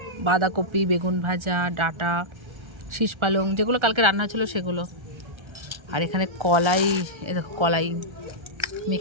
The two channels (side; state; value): left; late; 1.3 ms